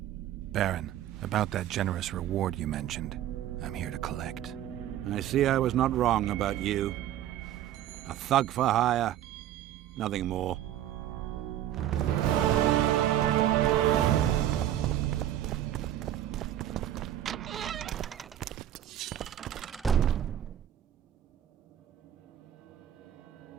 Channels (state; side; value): quieter; left; 11.8 dB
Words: Baron, about that generous reward you mentioned, I'm here to collect. I see I was not wrong about you. A thug for hire, nothing more.